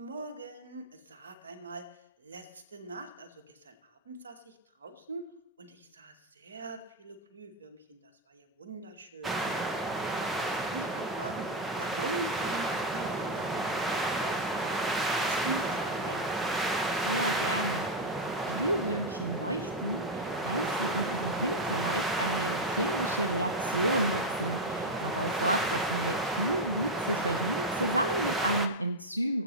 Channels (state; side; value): normal; both; correlation 0.01